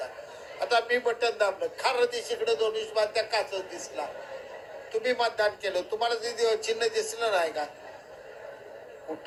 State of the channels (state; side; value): identical; both; correlation 1.00